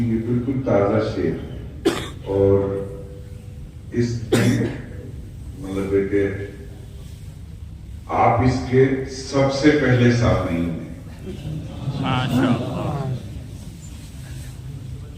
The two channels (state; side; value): identical; both; correlation 1.00